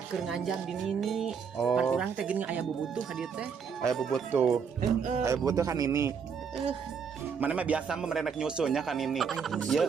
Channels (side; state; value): left; quieter; 6.4 dB